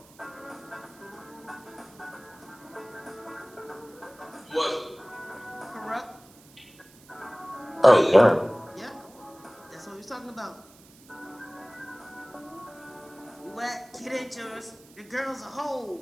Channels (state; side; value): noise; right; hiss, 25 dB below the sound